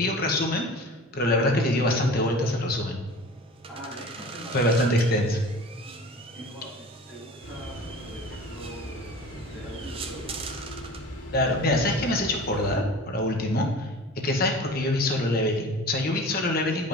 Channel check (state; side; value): normal; both; correlation 0.39